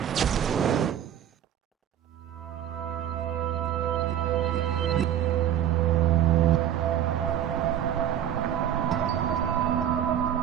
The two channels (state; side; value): quieter; left; 10.4 dB